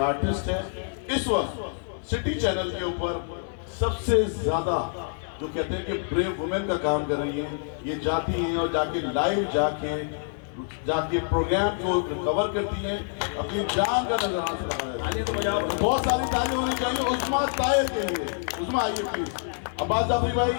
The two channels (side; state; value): right; silent; 60 dB below the other